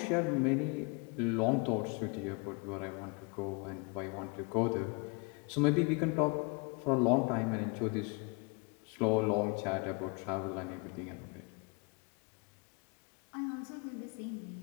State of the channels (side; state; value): right; quieter; 31.3 dB